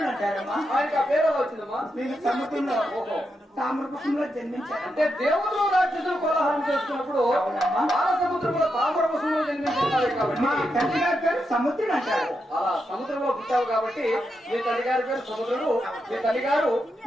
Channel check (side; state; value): both; normal; correlation 0.85